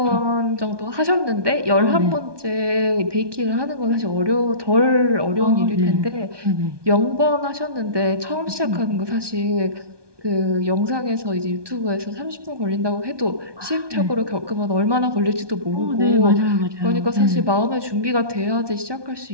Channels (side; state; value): left; late; 1.2 ms